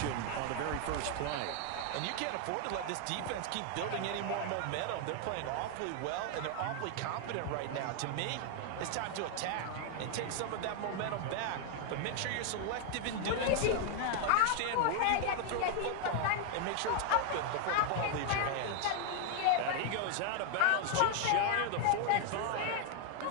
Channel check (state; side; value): different; both; correlation 0.00